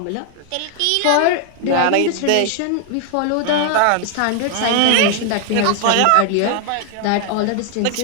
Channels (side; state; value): both; different; correlation 0.00